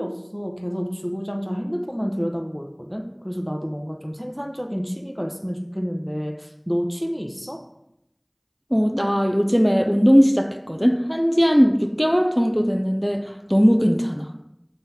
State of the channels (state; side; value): identical; both; correlation 1.00